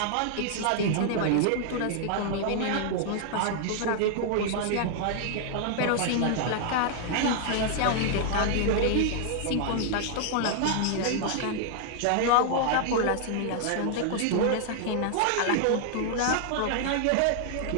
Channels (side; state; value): both; different; correlation 0.00